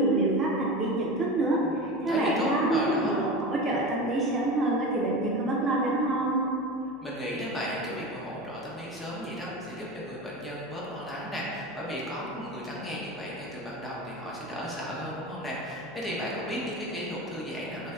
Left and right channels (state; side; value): noise; left; hum, 27 dB below the sound